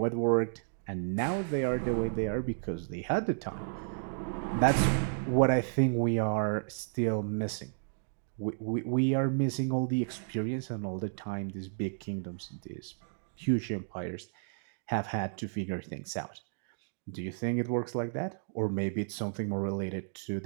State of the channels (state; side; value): silent; left; digital silence